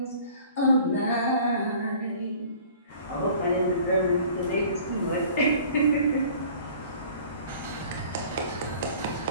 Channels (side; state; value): both; inverted; correlation -0.49